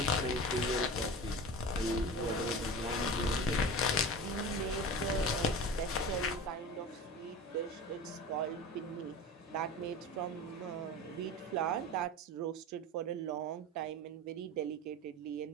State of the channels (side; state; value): both; normal; correlation 0.31